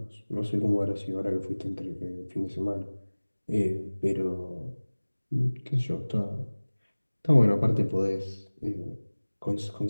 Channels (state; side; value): inverted; both; correlation -1.00